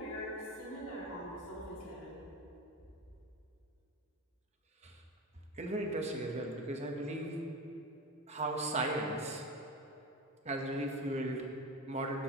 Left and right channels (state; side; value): normal; both; correlation 0.24